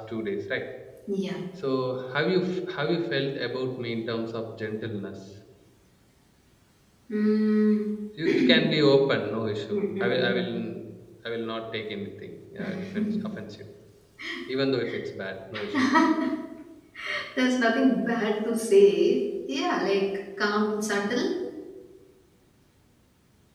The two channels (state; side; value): identical; both; correlation 1.00